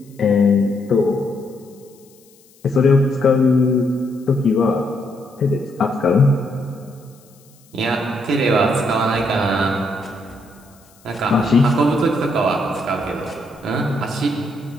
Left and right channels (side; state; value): left; noise; hiss, 29 dB below the sound